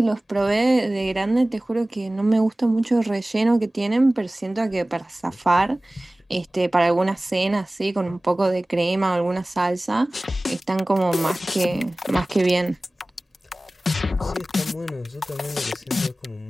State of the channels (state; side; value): normal; both; correlation 0.98